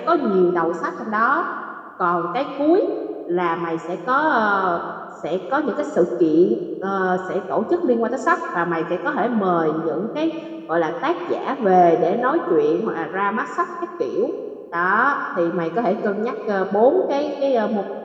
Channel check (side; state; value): both; identical; correlation 1.00